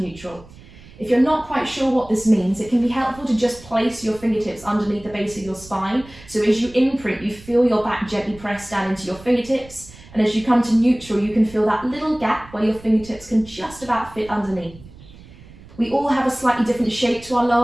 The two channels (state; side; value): noise; right; rumble, 20 dB below the sound